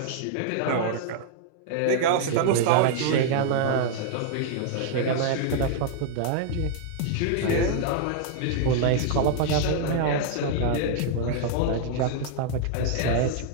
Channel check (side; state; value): both; different; correlation -0.01